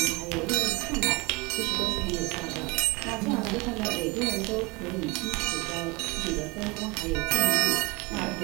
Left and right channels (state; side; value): quieter; left; 26.2 dB